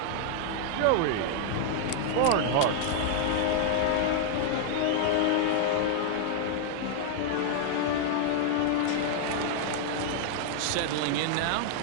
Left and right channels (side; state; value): both; different; correlation 0.00